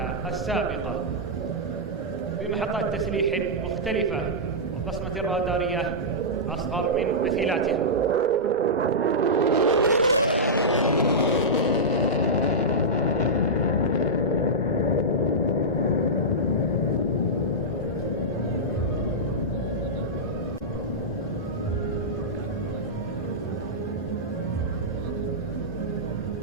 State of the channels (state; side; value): normal; both; correlation -0.11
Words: السابقة بمحطات تسليح مختلفة وبصمة رادارية أصغر من مثيلاتها.